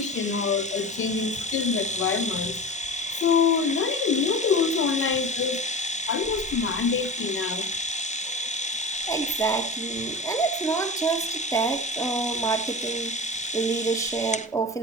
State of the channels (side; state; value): both; normal; correlation 0.32